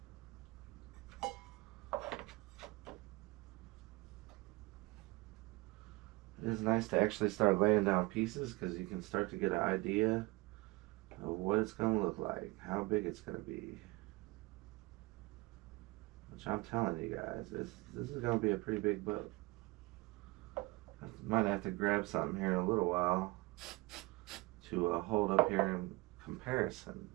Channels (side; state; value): left; quieter; 23.5 dB